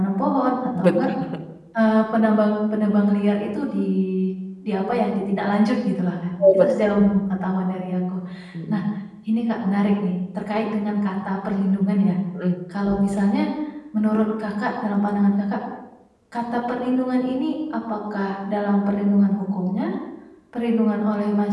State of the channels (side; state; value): both; identical; correlation 1.00